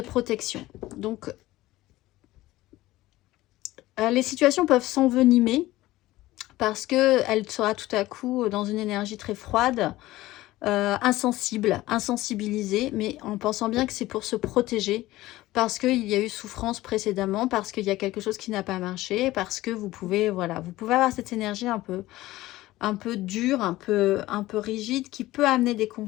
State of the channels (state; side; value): quieter; right; 17.2 dB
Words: Donc, les situations peuvent s'envenimer parce qu'elle sera tout à coup dans une énergie très froide, insensibilisée, mais en pensant bien que c'est pour se protéger, parce qu'il y a eu souffrance précédemment, parce qu'il y a quelque chose qui n'a pas marché, parce que vous pouvez, voilà, vous pouvez avoir cette énergie un peu dure, un peu rigide, qui peut amener des